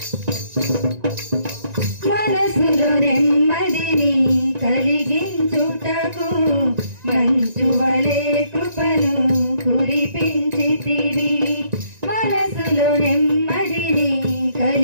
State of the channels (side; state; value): left; late; 1.9 ms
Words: మనసులో నెమ్మదిని కలిగించుటకు మంచువలే కృపను కురిపించితివి. మనసులో నెమ్మదిని